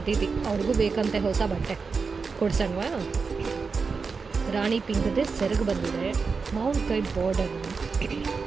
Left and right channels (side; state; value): left; quieter; 4.9 dB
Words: ಅವ್ರಿಗೂ ಬೇಕಂತೆ ಹೊಸ ಬಟ್ಟೆ ಕೊಡ್ಸಣ್ವಾ? ರಾಣಿ ಪಿಂಕ್ದೇ ಸೆರಗು ಬಂದಿದೆ. ಮಾವಿನಕಾಯಿ ಬಾರ್ಡರ್,